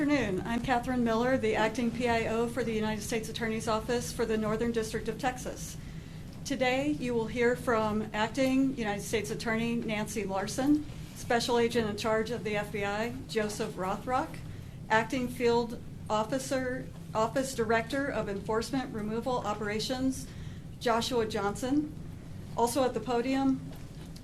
I'm Catherine Miller, the acting PIO for the United States Attorney's Office for the Northern District of Texas. Today, you will hear from Acting United States Attorney Nancy Larson, Special Agent in charge of the FBI, Joseph Rothrock, Acting Field Officer, Office Director of Enforcement Removal Operations, Joshua Johnson. Also at the podium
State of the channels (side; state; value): both; identical; correlation 1.00